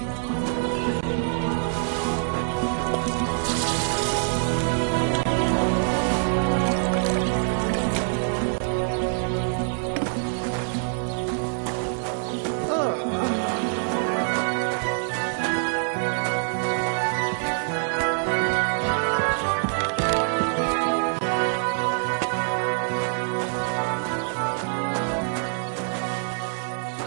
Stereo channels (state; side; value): silent; left; 62 dB below the other